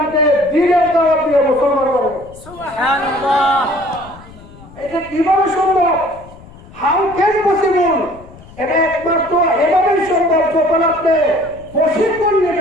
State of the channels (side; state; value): left; noise; rumble, 21 dB below the sound